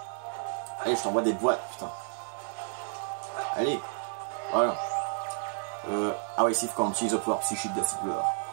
Allez, je t'envoie des boîtes, putain. Allez. Voilà. Ah ouais, Sif quand on utilise le pouvoir psychique de Silver.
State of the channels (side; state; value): left; silent; 57 dB below the other